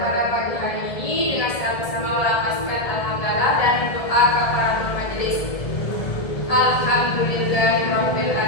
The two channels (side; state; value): right; late; 1.7 ms